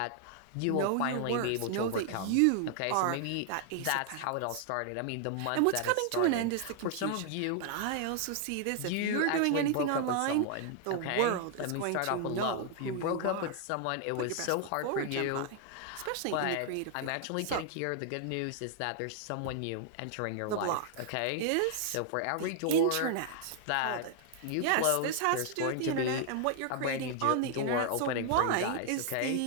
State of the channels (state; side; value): different; both; correlation 0.00